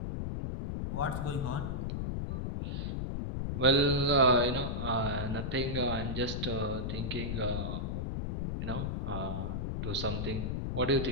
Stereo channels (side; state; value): left; noise; rumble, 2 dB below the sound